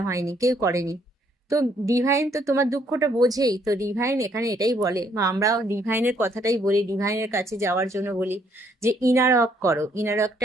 হয়নি, কেউ করেনি। তো ডিভাইন তো তোমার দুঃখটা বোঝেই। তো ডিভাইন এখানে এটাই বলে, বা আমরা ডিভাইনের কথাটাই বলি, ডিভাইনের কাছে যাওয়ার জন্য বলি যে ইনার ওয়ার্ক করো। ইনার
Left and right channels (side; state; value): both; normal; correlation 0.68